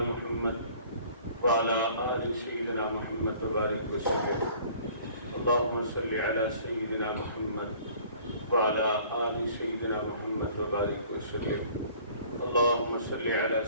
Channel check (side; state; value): both; inverted; correlation -0.53